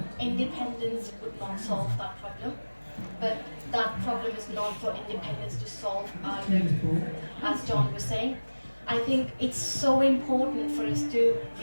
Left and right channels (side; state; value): both; inverted; correlation -1.00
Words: independence would not solve that problem. But that problem is not for independence to solve either, as John was saying. I think it's so important for us to